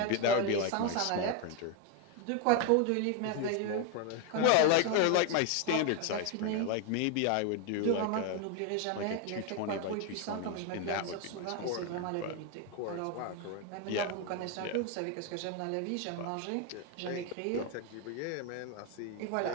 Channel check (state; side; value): different; both; correlation 0.01